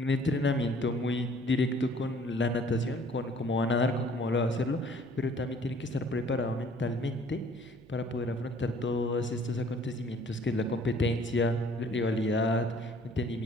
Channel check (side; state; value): right; noise; hum, 25 dB below the sound